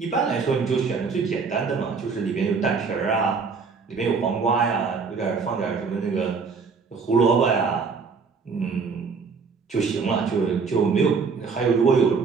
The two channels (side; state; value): left; quieter; 5.1 dB